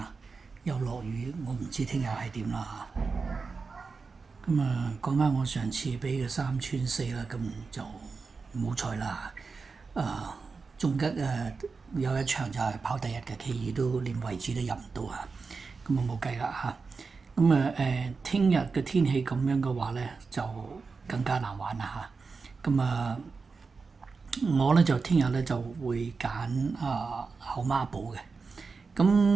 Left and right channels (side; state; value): left; quieter; 4.6 dB